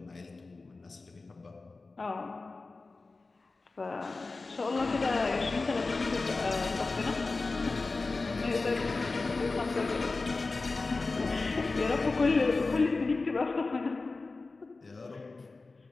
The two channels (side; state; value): right; quieter; 3.7 dB